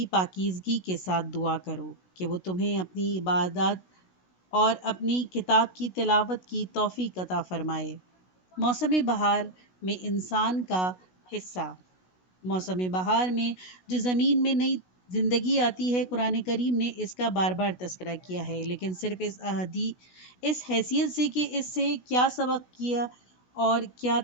پاکیزگی کے ساتھ دعا کرو کہ وہ تمہیں اپنی عبادات اور اپنی کتاب کی تلاوت کی توفیق عطا فرمائے۔ موسم بہار میں انسان کا حصہ۔ موسم بہار میں جو زمین میں نئی زندگی آتی ہے، قرآن کریم نے اس کا بار بار تذکرہ کیا ہے، لیکن صرف اس حیثیت سے کہ اس سے کیا سبق کیا اور کیا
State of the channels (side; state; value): right; late; 16 ms